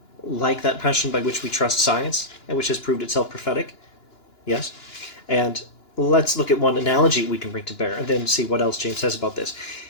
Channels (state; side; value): late; right; 2.9 ms